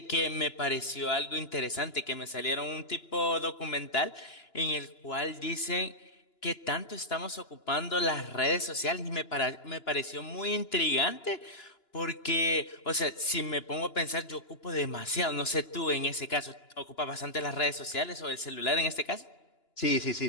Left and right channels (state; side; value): late; right; 2.9 ms